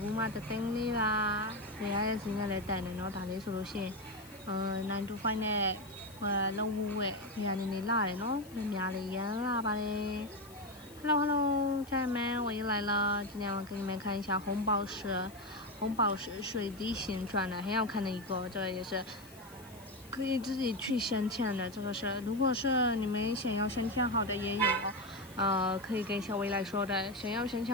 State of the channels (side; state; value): left; noise; hiss, 22 dB below the sound